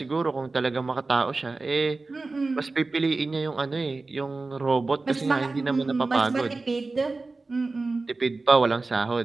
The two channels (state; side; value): quieter; left; 3.6 dB